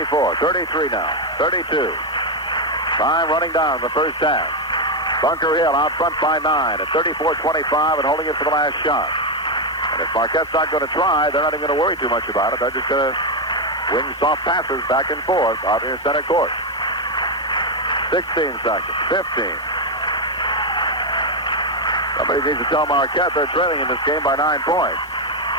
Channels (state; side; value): normal; both; correlation 0.05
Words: 33 now, 32. Time running down in the first half. Bunker Hill out front by 9 at 34-25 and holding it for the last shot. And if Marquette's not going to try, they're not even going to worry too much about it. They're just going to wing soft passes back and forth out near center court. 16 seconds, 15. Somebody needs to tell Marquette they're trailing in this game by 9 points.